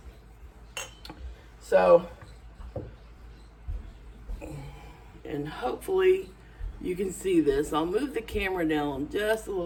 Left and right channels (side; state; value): both; identical; correlation 1.00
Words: So, and hopefully you can see this. I'll move the camera down just a